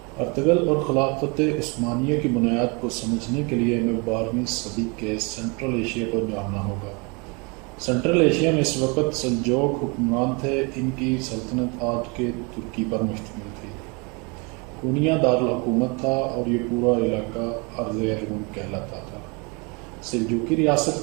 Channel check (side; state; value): left; quieter; 30.6 dB